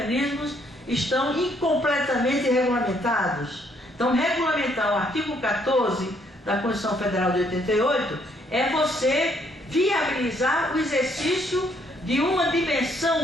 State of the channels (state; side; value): normal; both; correlation 0.68